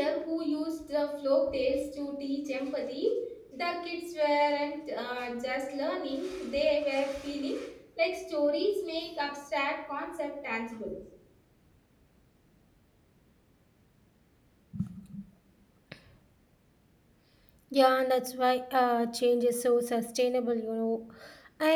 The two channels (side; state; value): both; identical; correlation 1.00